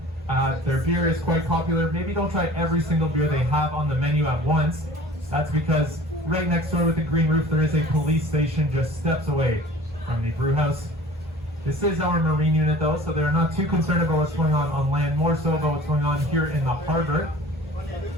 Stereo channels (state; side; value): normal; both; correlation 0.45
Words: Their beer is quite popular. Maybe don't try every single beer they have on the menu at once. That's because right next door with the green roof, there is a police station just steps away from the brew house. This is our marine unit though, so they're not too concerned about what's going on land, more so about what's going on here in the harbor.